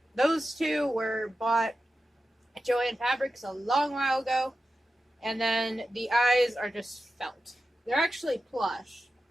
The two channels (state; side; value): normal; both; correlation 0.91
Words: Those two were bought at Joann Fabrics a long while ago. And then the eyes are just felt. They're actually plush.